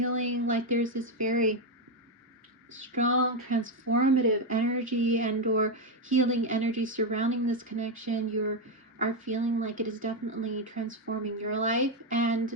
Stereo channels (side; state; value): both; normal; correlation 0.06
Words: like there's this very strong transformative energy and or healing energy surrounding this connection. You are feeling like it is definitely transforming your life.